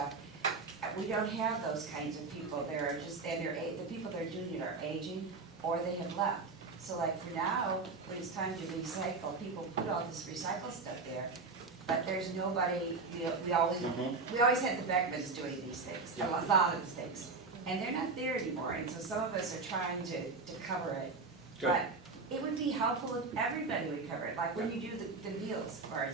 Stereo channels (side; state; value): left; quieter; 4.1 dB